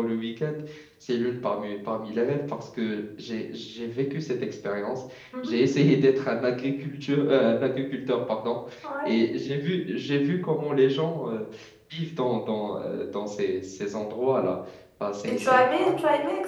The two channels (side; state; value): both; identical; correlation 1.00